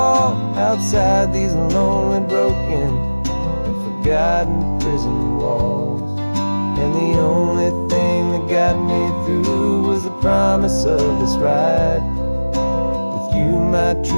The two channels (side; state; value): both; inverted; correlation -1.00